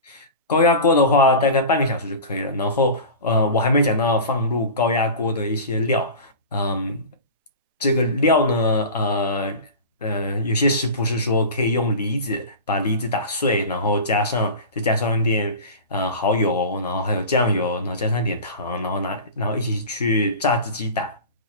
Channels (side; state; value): both; inverted; correlation -0.32